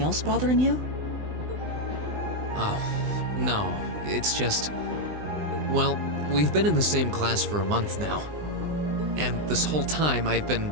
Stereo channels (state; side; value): late; left; 20 ms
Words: else bothering you? Oh, no. It's just... Well, we've been in the same class for a month now. And this whole time I've been